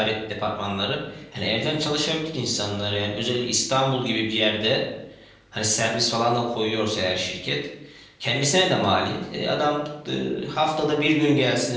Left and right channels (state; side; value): identical; both; correlation 1.00